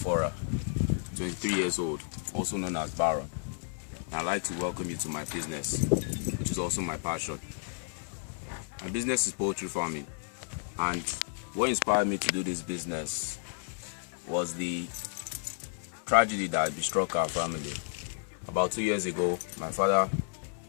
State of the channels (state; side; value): silent; right; 57 dB below the other